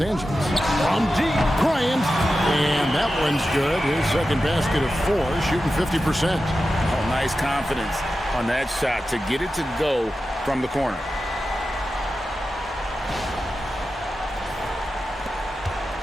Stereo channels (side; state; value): both; normal; correlation 0.92